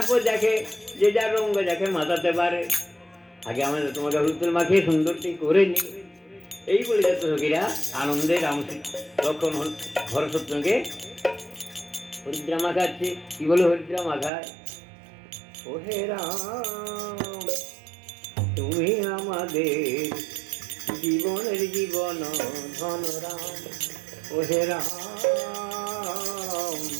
দেখে যে যার রঙ দেখে মাতাতে পারে। আগে আমরা তোমাকে হলুদ তেল মাখিয়ে সুন্দরটি করে নিই। এই বলে যাচ্ছে সখীরা আনন্দে রাম লক্ষণ ভরতকে হরিদ্রা মাখাচ্ছে। কি বলে হরিদ্রা মাখায়? ও হে রাম, তুমি আমাদের জীবনের জীবন ধন রাম, ও হে রাম,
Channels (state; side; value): drops out; left; at 14.3 s